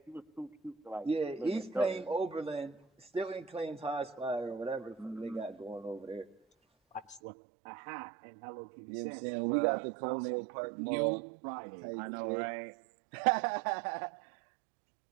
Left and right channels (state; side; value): drops out; left; at 7.2 s